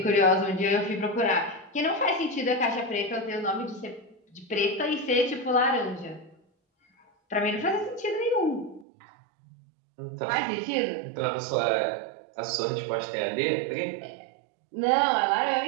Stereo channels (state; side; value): drops out; left; at 8.8 s